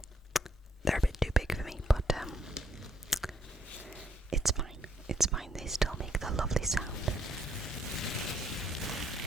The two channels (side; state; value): both; normal; correlation 0.69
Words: they're a bit too big for me, but it's fine. They still make the lovely sound.